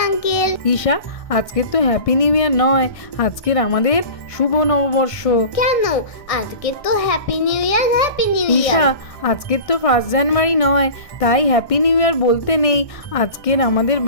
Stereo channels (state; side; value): late; right; 1.6 ms